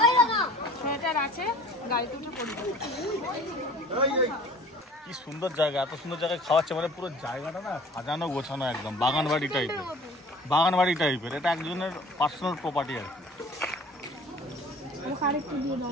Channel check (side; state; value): both; normal; correlation 0.47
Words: সেটার আছে, গাড়িতে উঠে পড়বে। কি সুন্দর জায়গা, এত সুন্দর জায়গায় খাওয়াচ্ছে, মানে পুরো জায়গাটা না সাজানো গোছানো একদম বাগান বাড়ি টাইপের। বাগান বাড়ি টাইপের, এটা একজনের পার্সোনাল প্রপার্টি আর কি।